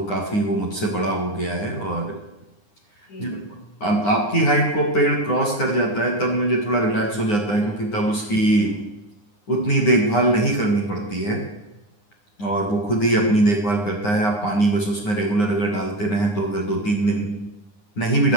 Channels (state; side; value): late; right; 9.7 ms